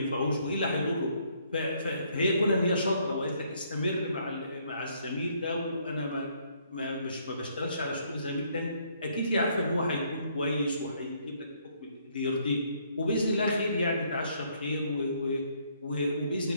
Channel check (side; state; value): both; inverted; correlation -0.68